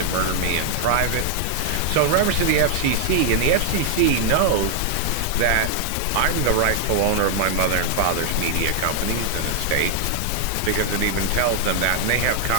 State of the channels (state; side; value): different; both; correlation 0.00